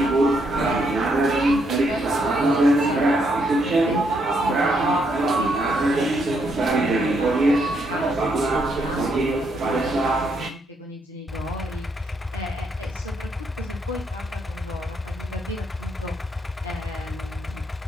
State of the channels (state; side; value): normal; both; correlation 0.75